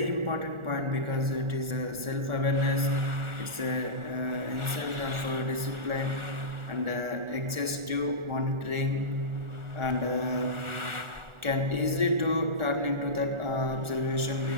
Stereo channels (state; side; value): late; left; 1.4 ms